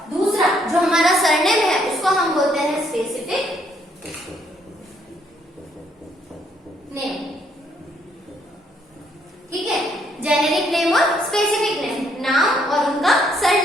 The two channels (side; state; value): both; normal; correlation 0.70